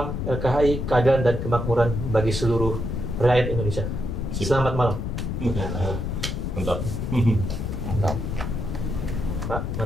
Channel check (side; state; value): left; noise; rumble, 3 dB below the sound